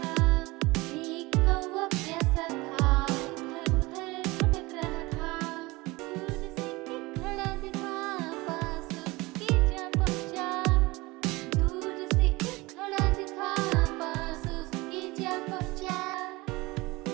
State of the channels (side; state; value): left; quieter; 22.3 dB